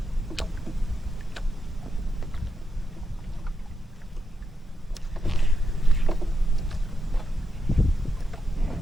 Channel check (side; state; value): both; normal; correlation 0.84